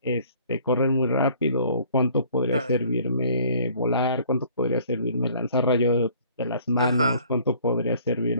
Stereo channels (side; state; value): both; inverted; correlation -0.56